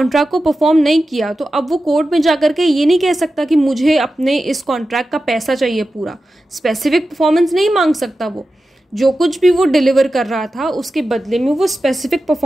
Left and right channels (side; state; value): both; normal; correlation 0.93